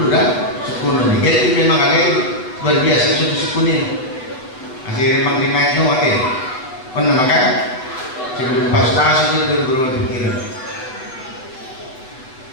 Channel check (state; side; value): late; right; 7.8 ms